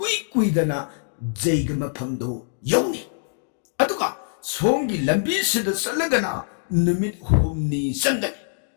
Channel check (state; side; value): silent; right; digital silence